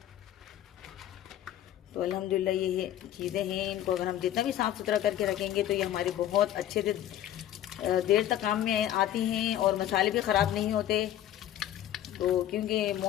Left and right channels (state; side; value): quieter; right; 12.1 dB